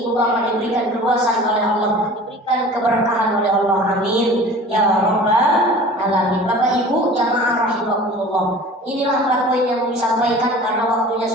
ibu bapak diberikan keluasan oleh Allah, diberikan keberkahan oleh Allah. Amin ya Rabbal Alamin. Bapak Ibu jamaah rahimakumullah, inilah 4 poin yang disampaikan karena waktunya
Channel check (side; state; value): both; normal; correlation 0.42